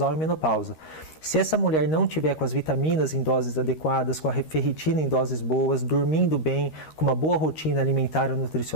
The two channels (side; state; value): right; late; 13 ms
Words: e menopausa. Se essa mulher não tiver com as vitaminas em doses adequadas, com a ferritina em doses boas, dormindo bem, com uma boa rotina alimentar ou